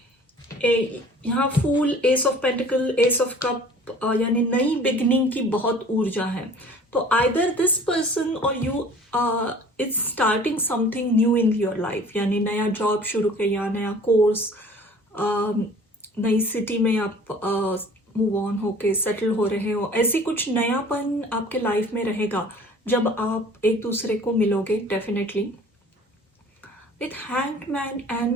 यहाँ fool, ace of pentacle, ace of cup, यानी नई बिगनिंग की बहुत ऊर्जा है। तो आइदर दिस पर्सन और you is starting something new in your life, यानी नया जॉब शुरू किया, नया कोर्स, नई सिटी में आप मूव ऑन होके सेटल हो रहे हो। ऐसी कुछ नयापन आपके लाइफ में रहेगा जब आप एक दूसरे को मिलोगे definitely. With hanged man and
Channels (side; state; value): both; normal; correlation 0.48